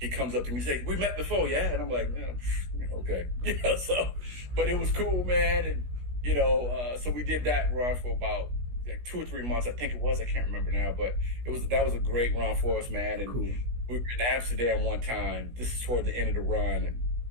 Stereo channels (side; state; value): left; late; 16 ms